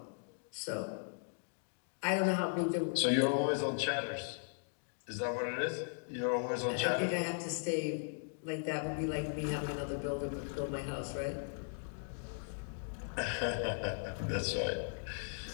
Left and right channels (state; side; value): silent; right; digital silence